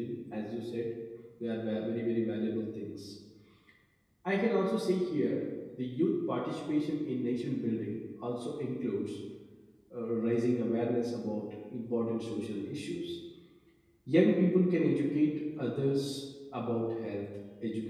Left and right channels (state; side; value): identical; both; correlation 1.00